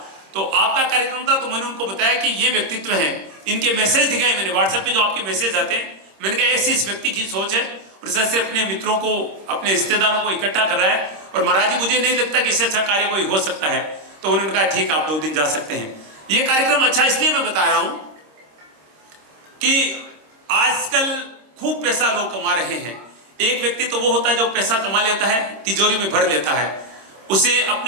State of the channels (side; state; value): left; late; 26 ms